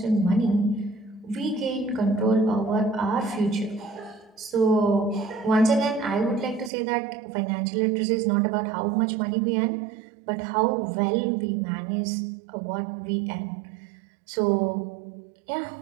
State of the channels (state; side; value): drops out; left; at 6.7 s